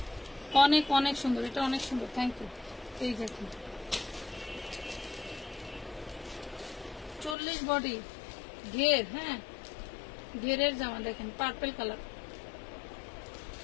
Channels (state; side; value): drops out; right; at 7.4 s